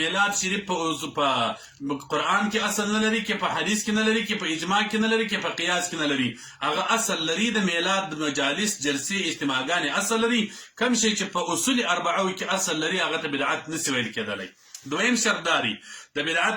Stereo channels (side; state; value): both; identical; correlation 1.00